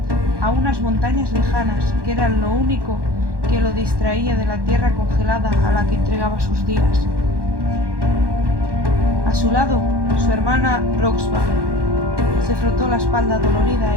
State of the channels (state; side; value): late; left; 1.1 ms